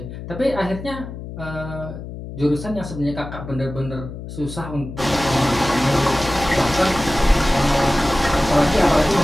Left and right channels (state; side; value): noise; left; hum, 10 dB below the sound